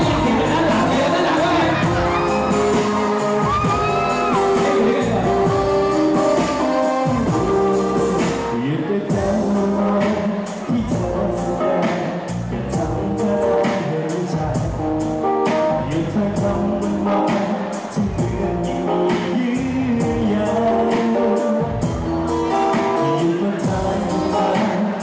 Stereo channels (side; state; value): both; identical; correlation 1.00